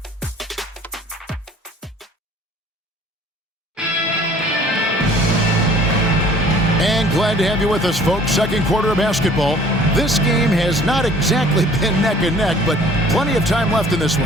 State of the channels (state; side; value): normal; both; correlation 0.53